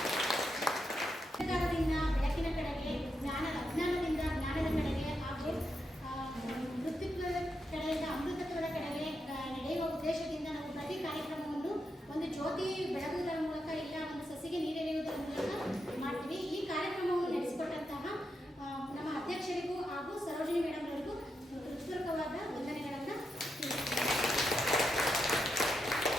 ಬೆಳಕಿನ ಕಡೆಗೆ ಅಜ್ಞಾನದಿಂದ ಜ್ಞಾನದ ಕಡೆಗೆ ಹಾಗೂ ಮೃತ್ಯುತ್ವದ ಕಡೆಯಿಂದ ಅಮೃತತ್ವದ ಕಡೆಗೆ ನಡೆಯುವ ಉದ್ದೇಶದಿಂದ ನಾವು ಪ್ರತಿ ಕಾರ್ಯಕ್ರಮವನ್ನು ಒಂದು ಜ್ಯೋತಿ ಬೆಳಗುವುದರ ಮೂಲಕ ಇಲ್ಲ ಒಂದು ಸಸಿಗೆ ನೀರೆರೆಯುವುದರ ಮೂಲಕ ಮಾಡ್ತೀವಿ. ಈ ಕಾರ್ಯಕ್ರಮವನ್ನು ನಡೆಸಿಕೊಟ್ಟಂತಹ ನಮ್ಮ ಅಧ್ಯಕ್ಷರಿಗೂ ಹಾಗೂ ಸರೋಜಿನಿ ಮೇಡಮ್ ಅವರಿಗೂ ಹೃತ್ಪೂರ್ವಕವಾದ ವಂದನೆಗಳನ್ನು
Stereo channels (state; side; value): normal; both; correlation 0.84